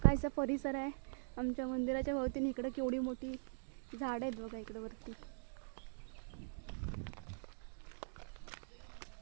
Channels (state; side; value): silent; left; digital silence